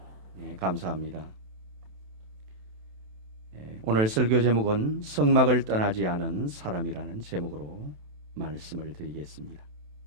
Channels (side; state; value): left; late; 27 ms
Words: 네, 감사합니다. 오늘 설교 제목은 성막을 떠나지 않은 사람이라는 제목으로 말씀을 드리겠습니다.